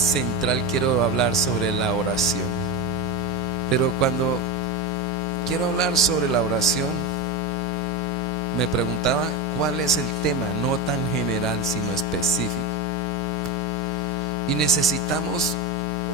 Quiero hablar sobre la oración. Pero cuando quiero hablar sobre la oración, me preguntaba cuál es el tema, no tan general sino específico. Y necesitamos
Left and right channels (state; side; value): normal; both; correlation 0.18